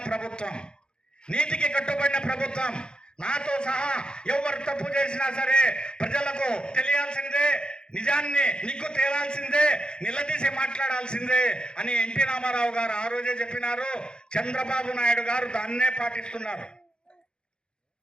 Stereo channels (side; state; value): right; late; 0.049 ms